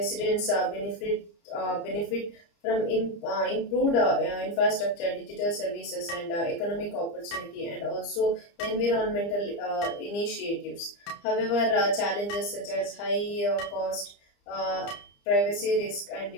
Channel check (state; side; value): late; right; 30 ms